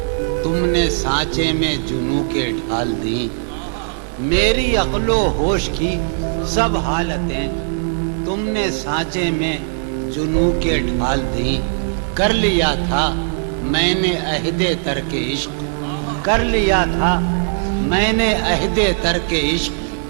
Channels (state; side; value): silent; left; 67 dB below the other